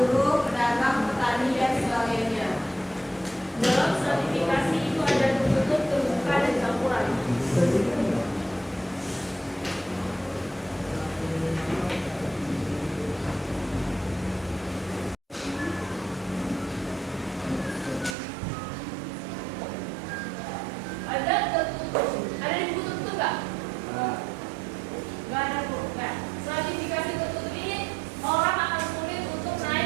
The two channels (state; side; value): drops out; left; at 18.2 s